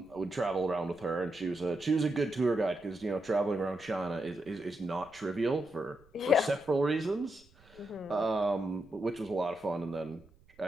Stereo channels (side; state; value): right; noise; rumble, 28 dB below the sound